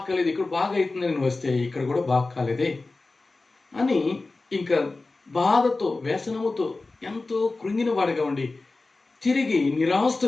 కాలేదు, ఇక్కడ బాగా అవుతుందని వస్తే ఇక్కడ కూడా బాగు కాలేదే అని ఇంకా బాధతో, వ్యసనముతో ఎంతో కృంగిన వాడిగా ఉండి తిరిగి నిరాశతో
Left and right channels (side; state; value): right; quieter; 3.4 dB